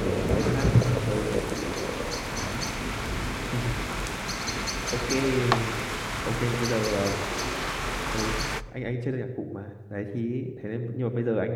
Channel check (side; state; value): both; identical; correlation 1.00